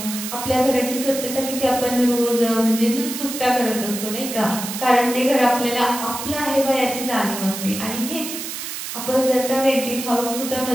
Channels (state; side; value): noise; right; hiss, 7 dB below the sound